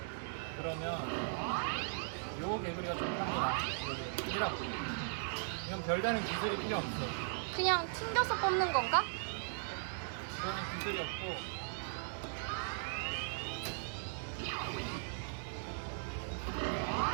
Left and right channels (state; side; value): silent; left; digital silence